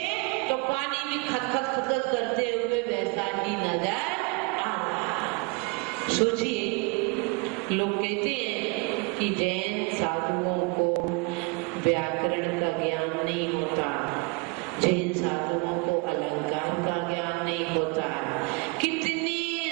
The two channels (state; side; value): quieter; left; 30.1 dB